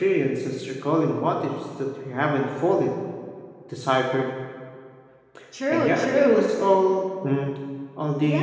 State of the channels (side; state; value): both; identical; correlation 1.00